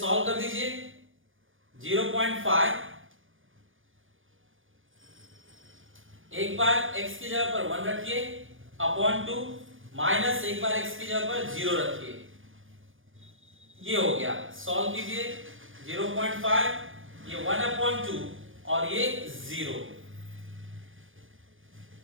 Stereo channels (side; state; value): left; late; 0.58 ms